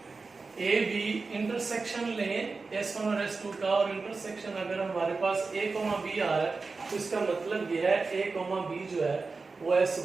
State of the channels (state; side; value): quieter; left; 4.2 dB